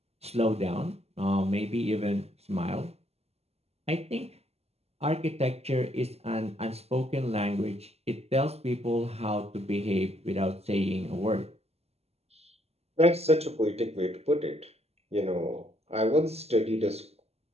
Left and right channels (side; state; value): left; late; 0.30 ms